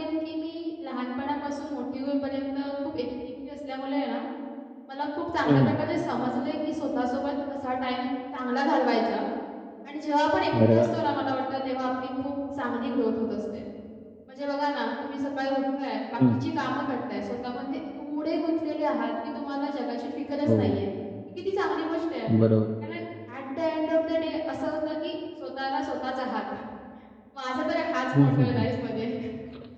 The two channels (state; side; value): identical; both; correlation 1.00